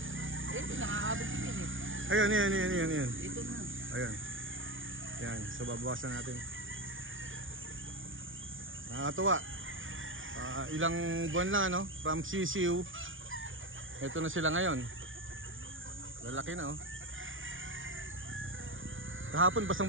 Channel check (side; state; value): left; late; 0.57 ms